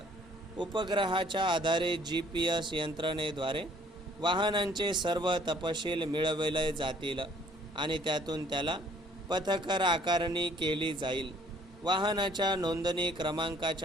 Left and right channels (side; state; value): both; normal; correlation 0.59